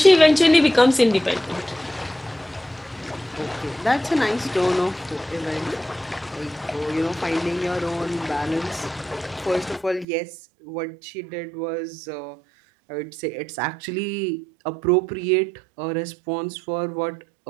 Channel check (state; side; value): drops out; left; at 10.1 s